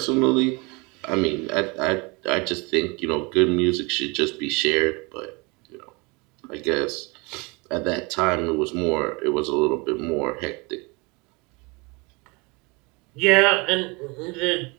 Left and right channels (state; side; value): quieter; left; 27.9 dB